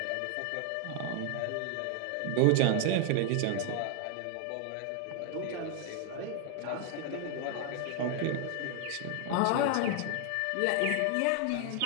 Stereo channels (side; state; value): both; different; correlation 0.00